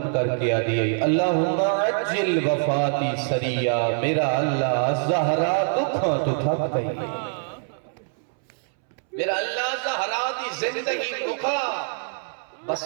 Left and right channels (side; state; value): left; silent; 62 dB below the other